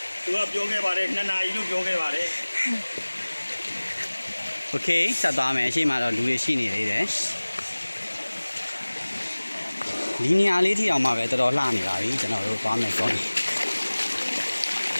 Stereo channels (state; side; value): inverted; both; correlation -1.00